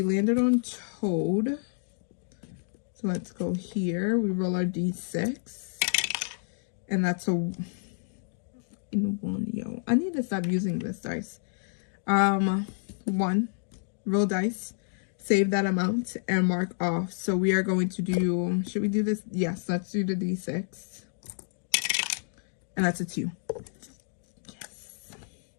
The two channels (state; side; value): silent; right; digital silence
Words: landed on toad. So let's go here. We roll our D6. And that's a in 1, yo. I need to stop using this dice. 1. Roll dice. Save that amount and mark off. So we are going to do, should we do this? Yes, let's do the D6. And that's a 2. Yes.